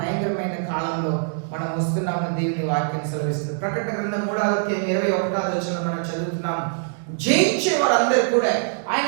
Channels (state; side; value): silent; left; digital silence